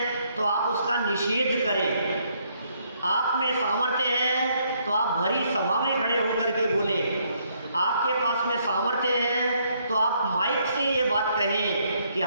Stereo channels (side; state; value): both; inverted; correlation -0.71